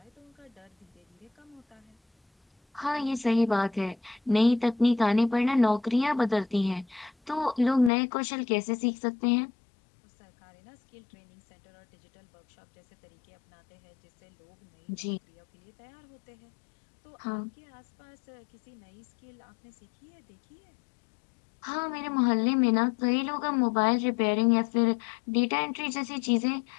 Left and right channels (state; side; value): drops out; right; at 7.9 s